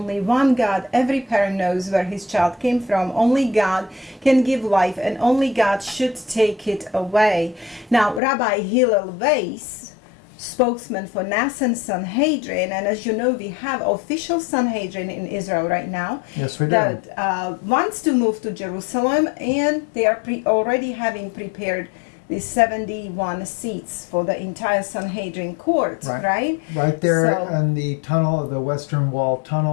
one God. Every parent knows where his child came from. Only God can give life, and only God should take it away. Now, Rabbi Hillel Weiss, spokesman for Nasan Sanhedrin, and as you know, we have official Sanhedrin in Israel right now. Yes, we do. That wants to move to Jerusalem, and they are already having prepared the 71 seats for the entire Sanhedrin court, right? Right there in the tunnel, the Western Wall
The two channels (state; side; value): drops out; right; at 8.2 s